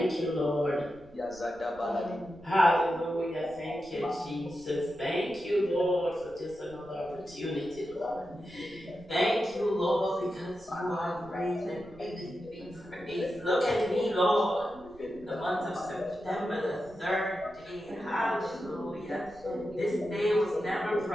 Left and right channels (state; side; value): noise; right; rumble, 24 dB below the sound